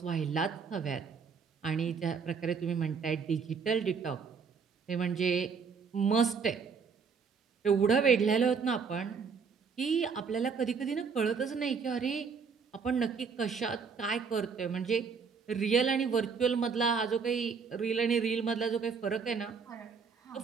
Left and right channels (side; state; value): left; quieter; 5.7 dB